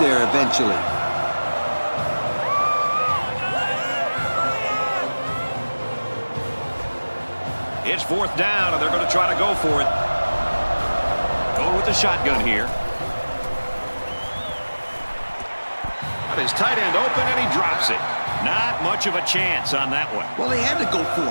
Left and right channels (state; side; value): inverted; both; correlation -1.00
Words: eventually. It's fourth down, and they're going to try to go for it. Going with the shotgun here. Got his tight end open, and he drops it. Not much of a chance on that one. Well, they had to go for